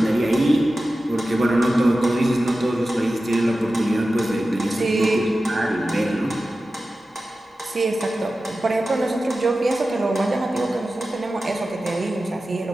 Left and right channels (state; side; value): normal; both; correlation 0.94